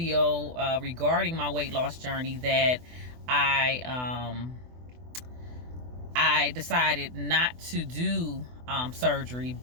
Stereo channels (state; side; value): late; left; 24 ms